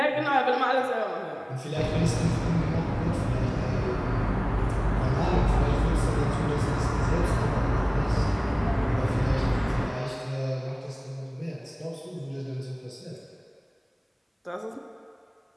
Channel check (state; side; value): identical; both; correlation 1.00